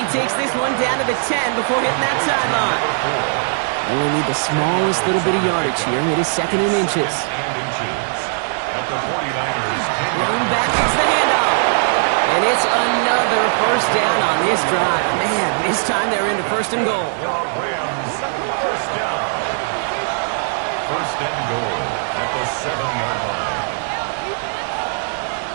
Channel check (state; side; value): silent; left; digital silence